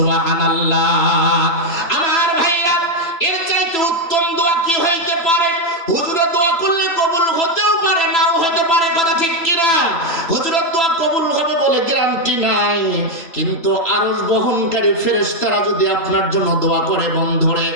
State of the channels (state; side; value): late; right; 3.0 ms